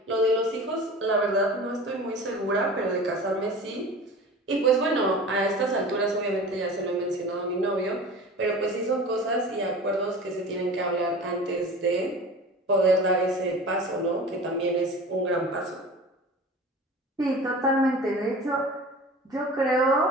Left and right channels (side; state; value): both; normal; correlation 0.37